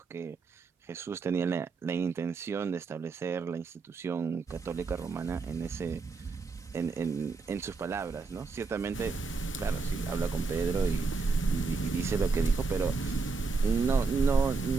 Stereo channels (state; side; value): quieter; left; 4.4 dB